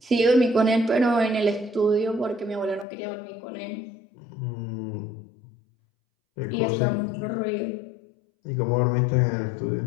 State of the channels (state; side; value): drops out; right; at 2.9 s